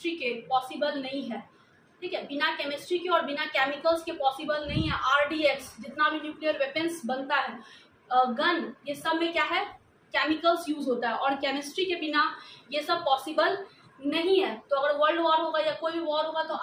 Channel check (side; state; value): both; identical; correlation 1.00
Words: के पॉसिबल नहीं है। ठीक है, बिना केमिस्ट्री के और बिना केमिकल्स के पॉसिबल नहीं है। आरडीएक्स जितना भी न्यूक्लियर वेपन्स बनता है, गन, ये सब में क्या है, केमिकल्स यूज होता है, और केमिस्ट्री के बिना ये सब पॉसिबल नहीं है। तो अगर वर्ल्ड वॉर होगा या कोई भी वॉर होगा तो